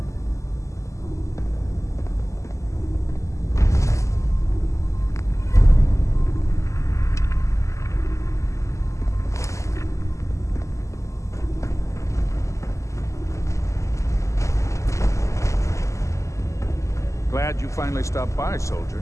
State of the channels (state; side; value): late; right; 0.15 ms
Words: Glad you finally stopped by, soldier.